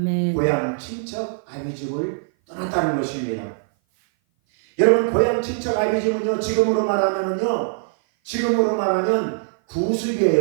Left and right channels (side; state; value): left; silent; 57 dB below the other